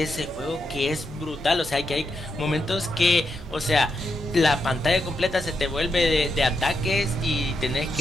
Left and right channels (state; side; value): normal; both; correlation 0.83